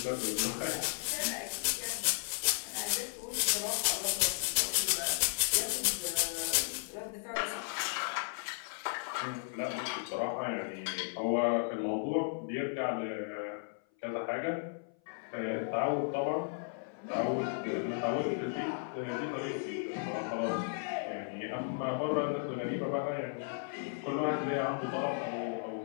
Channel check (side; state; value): right; silent; 54 dB below the other